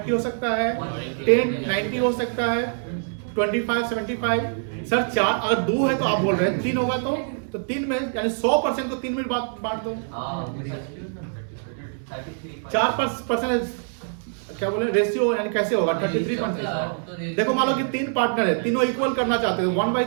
हो सकता है, 10-90 हो सकता है, 25-75। सर 4 अगर 2 है तो आप बोल रहे हैं 3 होगा तो 3 में यानी 100% को 3 में बांट दो। 4% क्या बोले रेशियो, यानी कैसे होगा? 33%। देखो मान लो कि 3 पार्टनर है, तीनों इक्वल करना चाहते हो,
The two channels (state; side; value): silent; left; digital silence